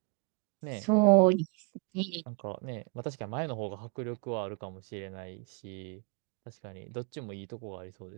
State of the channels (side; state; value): left; quieter; 32.3 dB